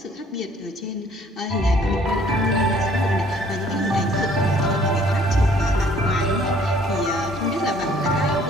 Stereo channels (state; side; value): normal; both; correlation 0.58